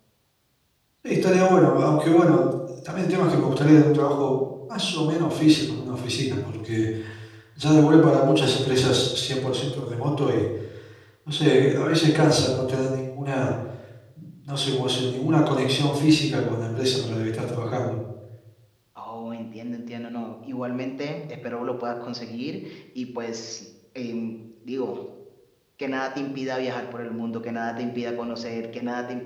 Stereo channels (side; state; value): both; identical; correlation 1.00